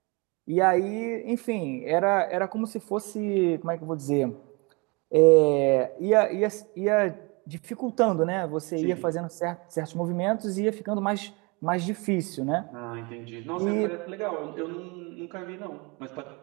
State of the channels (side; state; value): left; quieter; 28.5 dB